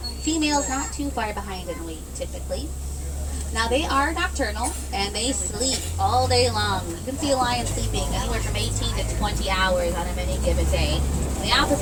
Females not too far behind in weight, typically. Now, they are nocturnal, and they sleep all day long. You can see a lion sleeping anywhere from 18 to 20 hours on any given day. The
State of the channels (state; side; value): identical; both; correlation 1.00